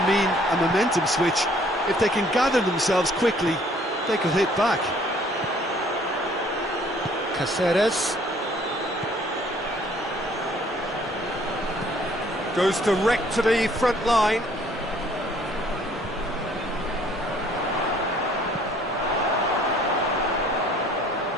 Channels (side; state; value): both; normal; correlation 0.59